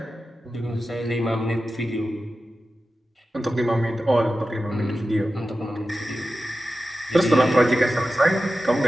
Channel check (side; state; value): both; normal; correlation 0.93